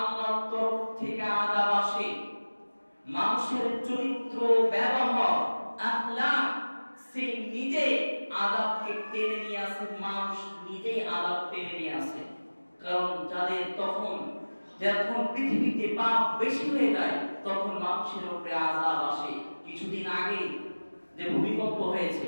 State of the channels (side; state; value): both; inverted; correlation -1.00